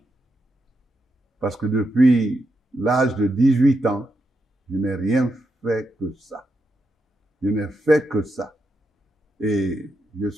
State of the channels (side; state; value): both; normal; correlation 0.84